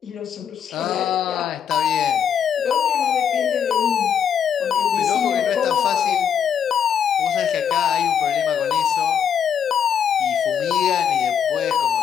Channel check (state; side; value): quieter; right; 8.1 dB